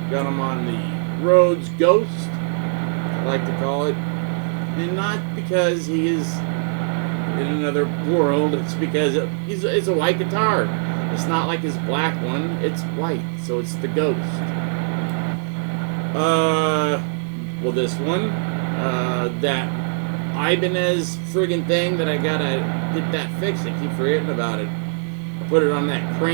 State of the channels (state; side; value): silent; left; 64 dB below the other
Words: Got them on the Rhodes Ghost, I like to call it, and not because he is in another world, it's because it's a white guitar. It's not like his black one, it's white, so it's the Ghost. Well, this one, that Ibanez friggin' thing that I gotta get that fixed, I keep forgetting about it. I put it on that